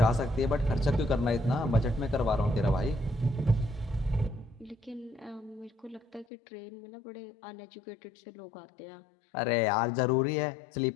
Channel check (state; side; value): drops out; right; at 6.2 s